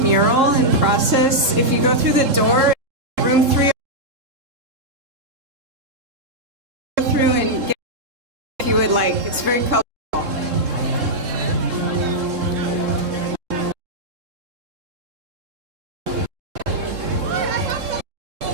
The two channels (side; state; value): left; late; 3.7 ms